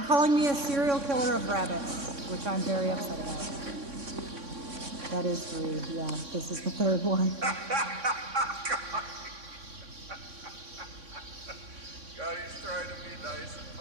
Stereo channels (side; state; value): left; late; 3.6 ms